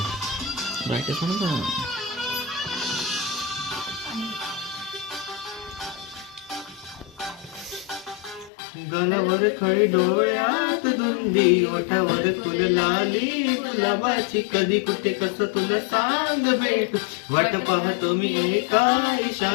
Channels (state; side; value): drops out; right; at 8.5 s